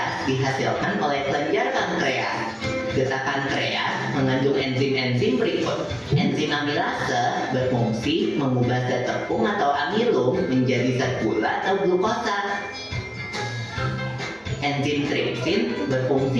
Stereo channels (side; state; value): both; identical; correlation 1.00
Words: dihasilkan oleh kelenjar pankreas. Getah pankreas mengandung enzim-enzim berikut. Enzim amilase berfungsi mengubah zat tepung atau amilum menjadi zat gula atau glukosa. Enzim tripsin